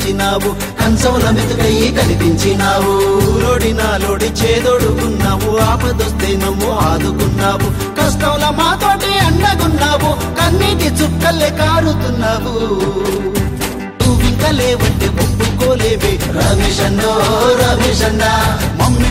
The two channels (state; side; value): identical; both; correlation 1.00